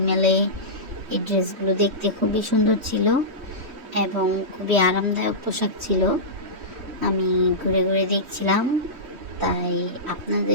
মলে এই ড্রেসগুলো দেখতে খুবই সুন্দর ছিল এবং খুবই আরামদায়ক পোশাক ছিল। আমি ঘুরে ঘুরে দেখছিলাম, তাই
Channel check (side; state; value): left; late; 3.1 ms